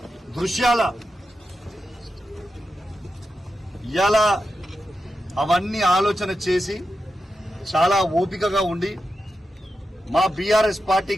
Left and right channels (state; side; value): normal; both; correlation 0.89